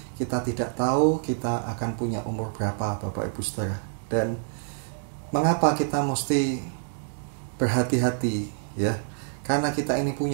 Kita tidak tahu kita akan punya umur berapa Bapak Ibu Saudara. Dan mengapa kita mesti berhati-hati, ya? Karena kita ini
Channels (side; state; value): left; silent; digital silence